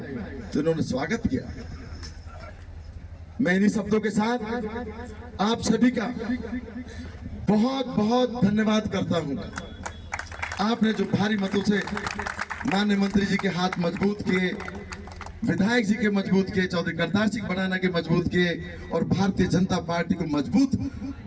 तो इन्होंने स्वागत किया। मैं इन्हीं शब्दों के साथ आप सभी का बहुत बहुत धन्यवाद करता हूं। आपने जो भारी मतों से माननीय मंत्री जी के हाथ मजबूत किए, विधायक जी के मजबूत किए, चौधरी करतार सिंह भड़ाना के मजबूत किए और भारतीय जनता पार्टी को मजबूत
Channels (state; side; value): identical; both; correlation 1.00